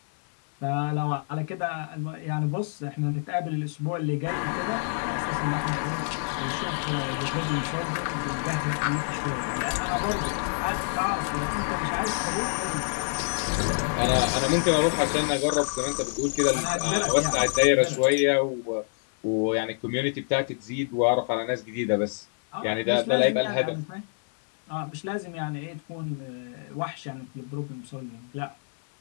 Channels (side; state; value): right; silent; 60 dB below the other